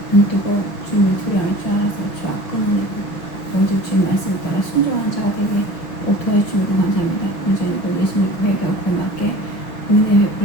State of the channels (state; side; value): late; right; 5.9 ms